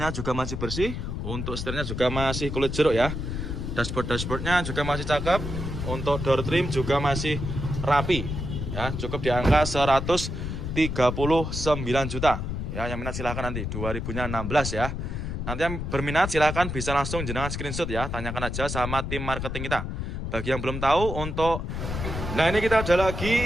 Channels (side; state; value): left; noise; rumble, 4 dB below the sound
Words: juga masih bersih. Untuk setirnya juga masih kulit jeruk ya. Dashboardnya juga masih cakep. Untuk door trim juga masih rapi ya. Cukup di angka 139 juta ya. Yang minat silahkan nanti 2000-nya 16 ya. Nanti yang berminat silahkan bisa langsung jenengan screenshot ya. Tanyakan aja sama tim marketing kita. Bagi yang belum tahu untuk... Nah, ini kita ada